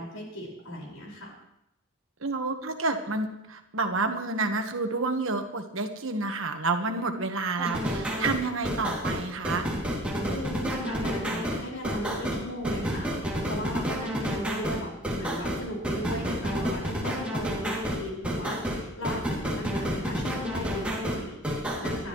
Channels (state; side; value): normal; both; correlation 0.41